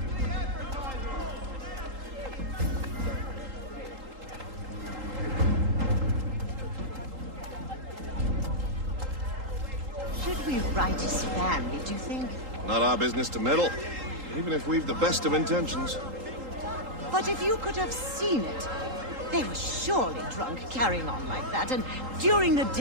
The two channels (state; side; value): late; left; 3.8 ms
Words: Should we write his family, do you think? Not our business to meddle, even if we've the best of intentions. But if you could have seen it, they were surely drunk carrying on like that, and during the